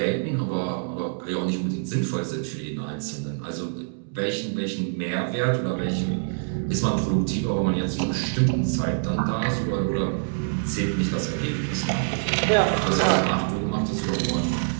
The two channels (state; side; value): silent; left; digital silence